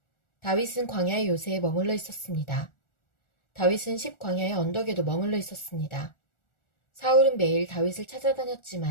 다윗은 광야의 요새에 머물러 있었습니다. 다윗은 십광야의 언덕에도 머물러 있었습니다. 사울은 매일 다윗을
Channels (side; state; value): right; late; 1.4 ms